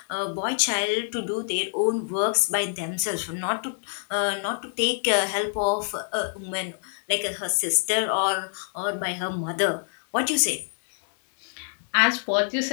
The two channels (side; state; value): right; silent; digital silence